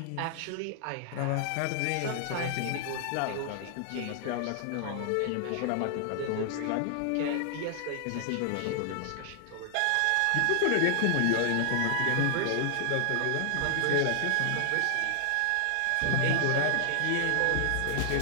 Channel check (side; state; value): both; different; correlation -0.01